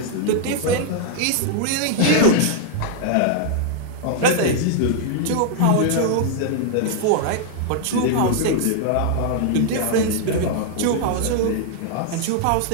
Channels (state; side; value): different; both; correlation 0.00